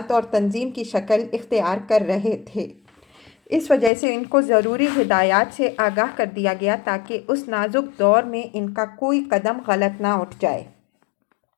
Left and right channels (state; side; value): drops out; right; at 3.9 s